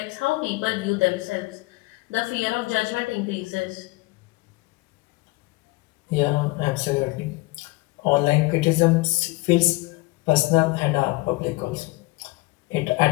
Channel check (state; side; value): quieter; right; 23.2 dB